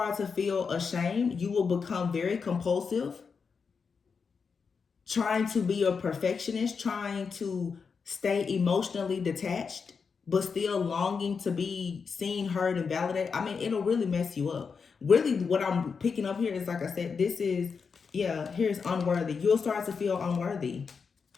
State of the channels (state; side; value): quieter; right; 5.6 dB